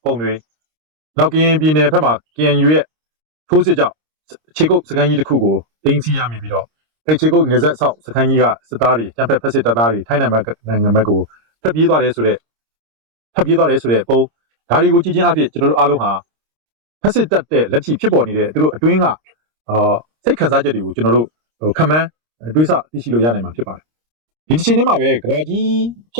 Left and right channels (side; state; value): left; late; 26 ms